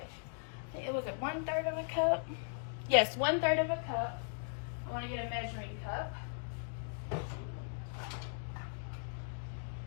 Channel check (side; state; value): right; silent; digital silence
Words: It was at 1/3 of a cup. Yes, 1/3 of a cup. I want to get a measuring cup.